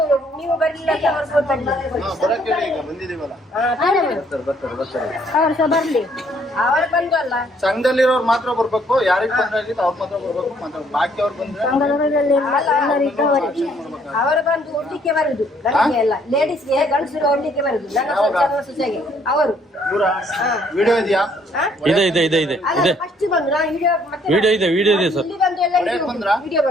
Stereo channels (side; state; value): both; normal; correlation 0.65